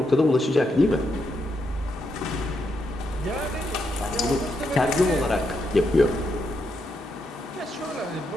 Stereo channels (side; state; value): both; normal; correlation 0.81